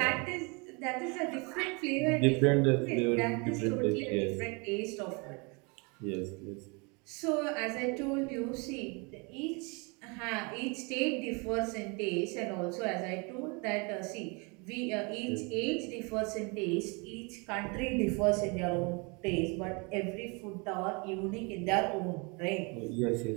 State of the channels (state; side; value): quieter; left; 30.6 dB